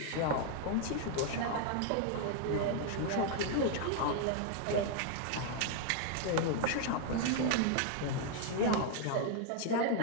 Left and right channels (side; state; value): both; different; correlation 0.00